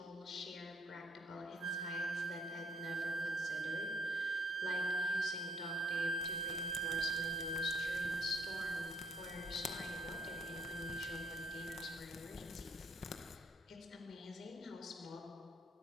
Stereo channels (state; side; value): normal; both; correlation 0.64